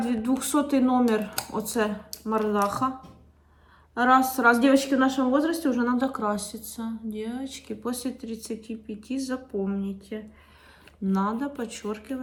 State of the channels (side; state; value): both; identical; correlation 1.00